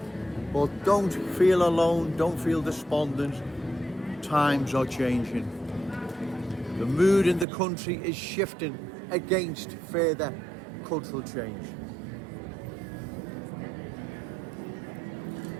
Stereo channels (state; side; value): drops out; left; at 7.5 s